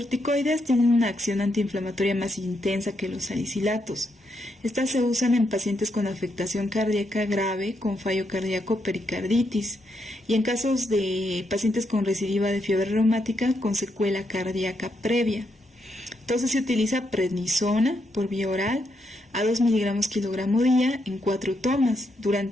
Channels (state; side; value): normal; both; correlation 0.79